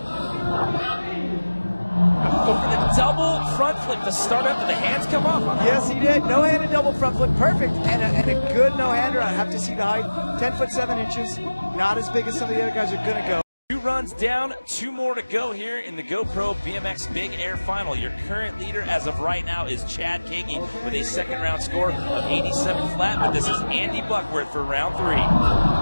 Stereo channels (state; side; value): inverted; both; correlation -1.00